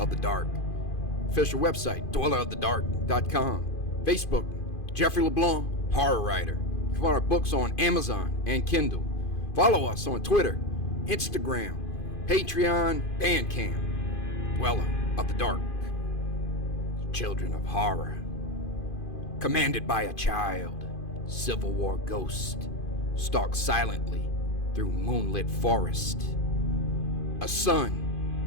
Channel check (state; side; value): late; right; 2.5 ms